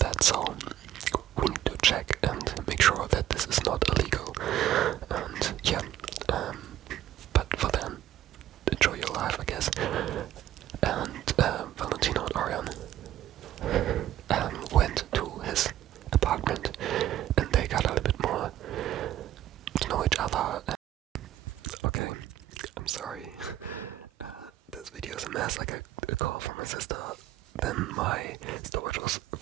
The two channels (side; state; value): left; quieter; 12.7 dB